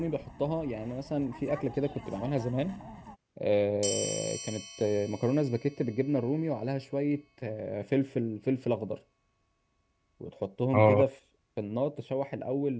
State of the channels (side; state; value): both; identical; correlation 1.00